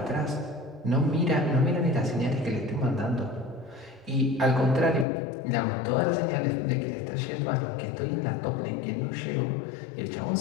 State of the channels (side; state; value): right; drops out; at 5.1 s